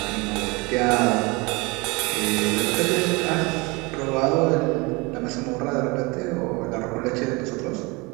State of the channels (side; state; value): left; quieter; 26.5 dB